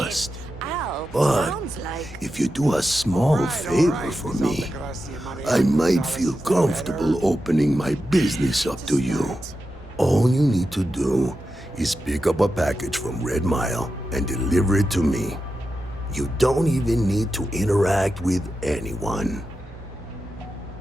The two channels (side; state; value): both; normal; correlation 0.90